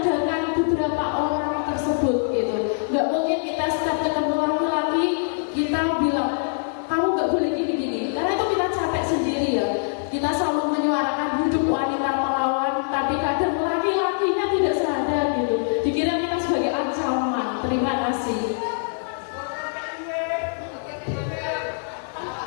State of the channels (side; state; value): right; silent; 63 dB below the other